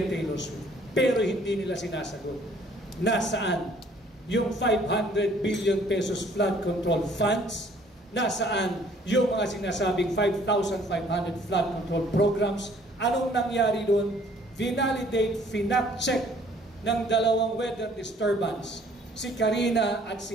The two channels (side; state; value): both; normal; correlation 0.59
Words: Taylor Swift. Pero hindi nila sinasagot. Nasaan yung 500 billion pesos flood control funds? Nasaan yung mga sinasabing 5,500 flood control programs? Anong nangyari doon? Vinalidate, finap-check ng dalawang weather disturbance, si Karina at